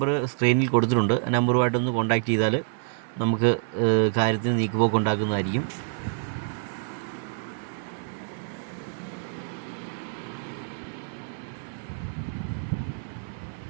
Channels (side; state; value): left; silent; 60 dB below the other